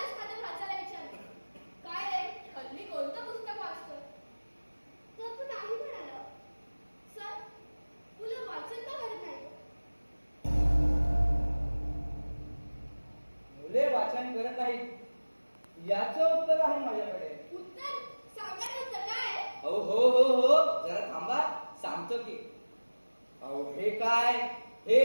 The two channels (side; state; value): both; inverted; correlation -1.00